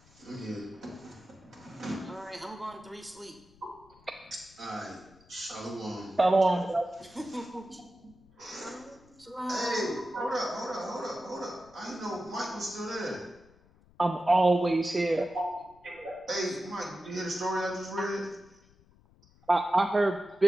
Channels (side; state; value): left; noise; rumble, 27 dB below the sound